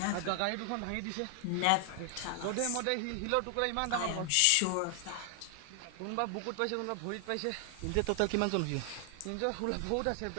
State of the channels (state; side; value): different; both; correlation 0.00